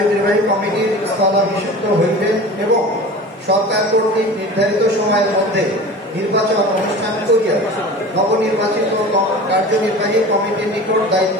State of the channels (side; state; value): both; normal; correlation 0.36